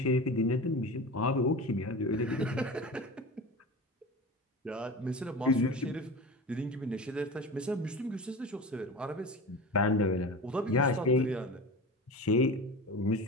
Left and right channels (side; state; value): both; normal; correlation 0.30